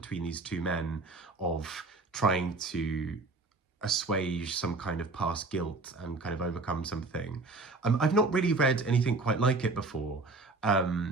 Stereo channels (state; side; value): quieter; left; 3.5 dB